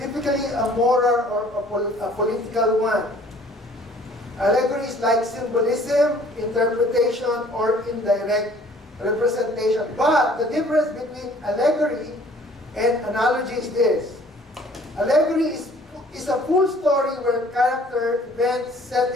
a moral or a political one. Allegory is like symbolism, interpretation, or indirect representation. But the difference between allegory and analogy is this. Allegory is a full story where character, events,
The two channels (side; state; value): both; normal; correlation 0.54